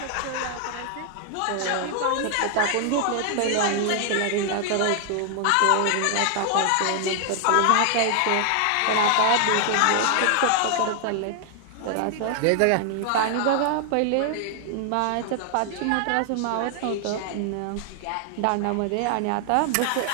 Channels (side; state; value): both; different; correlation 0.00